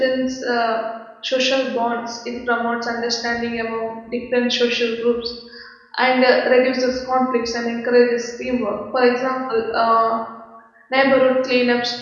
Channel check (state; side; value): identical; both; correlation 1.00